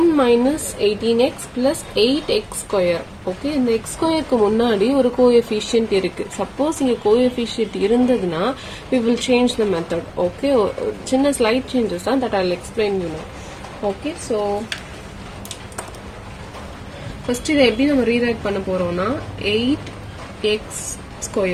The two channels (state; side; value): identical; both; correlation 1.00